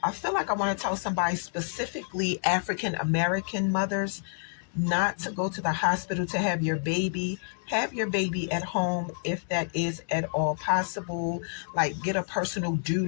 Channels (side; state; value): right; silent; digital silence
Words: I feel like I want to tell somebody, specifically African American mothers, not to go to the hospital to have your baby. Have your baby at home if that is at all possible. Like get a personal